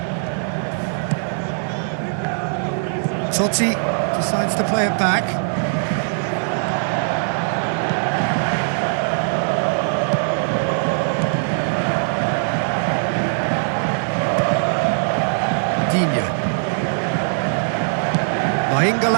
Totti decides to play it back.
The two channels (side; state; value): left; silent; digital silence